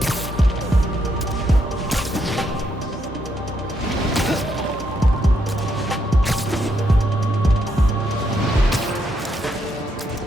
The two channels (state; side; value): normal; both; correlation 0.77